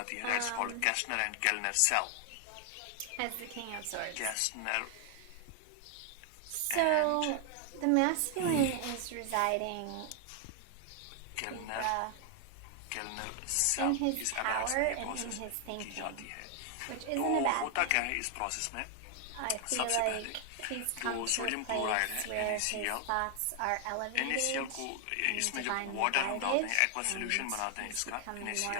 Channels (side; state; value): both; different; correlation 0.00